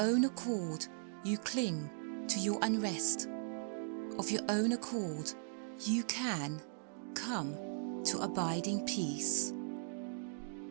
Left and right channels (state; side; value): silent; left; digital silence